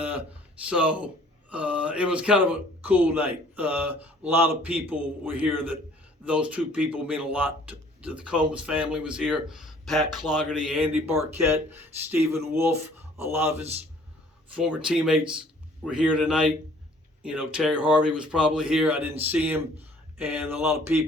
so it was kind of a cool night. A lot of people were here. That those two people mean a lot to the Combs family was here. Pat Clougherty, Andy Barquette, Stephen Wolf, a lot of his former teammates were here tonight. Terry Harvey was probably here. I didn't see him, and a lot of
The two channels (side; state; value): both; normal; correlation 0.56